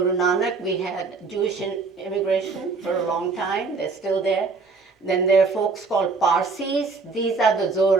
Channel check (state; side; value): quieter; left; 4.4 dB